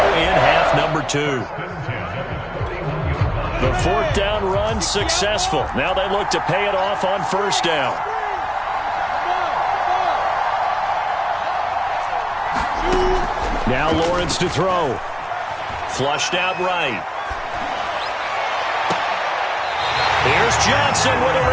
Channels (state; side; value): identical; both; correlation 1.00